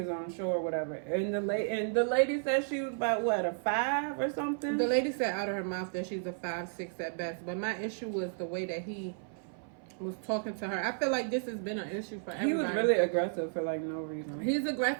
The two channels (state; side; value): silent; left; 56 dB below the other